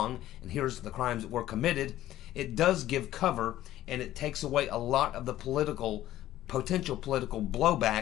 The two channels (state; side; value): quieter; right; 13.9 dB